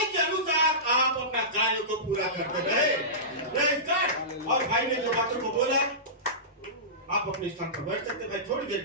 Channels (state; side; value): normal; both; correlation -0.20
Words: के अनुसार आप अपना कार्य को पूरा करते रहे। Praise God. और भाई ने जो बातों को बोला, आप अपने स्थान पर बैठ सकते भाई थोड़ी देर